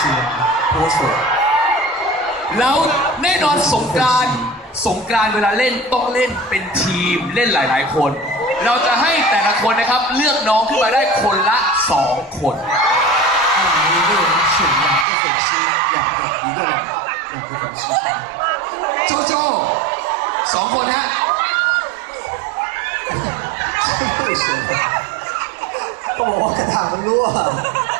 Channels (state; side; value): drops out; left; at 15.1 s